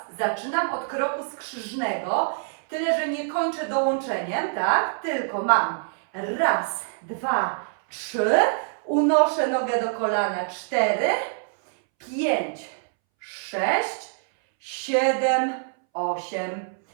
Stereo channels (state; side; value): silent; left; 62 dB below the other